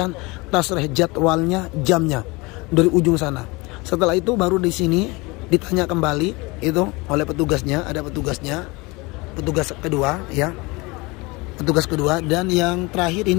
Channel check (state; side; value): quieter; right; 24.8 dB